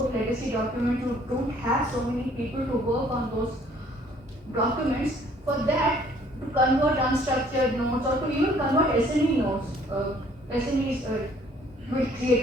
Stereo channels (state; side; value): normal; both; correlation 0.59